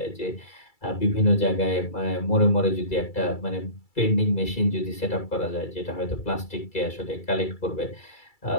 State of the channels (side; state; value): right; late; 2.3 ms